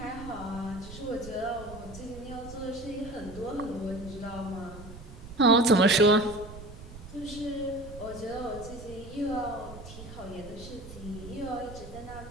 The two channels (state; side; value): noise; right; rumble, 14 dB below the sound